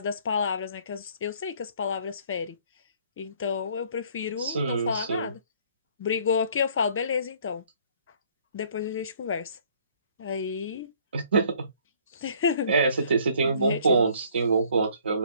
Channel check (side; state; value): both; inverted; correlation -0.59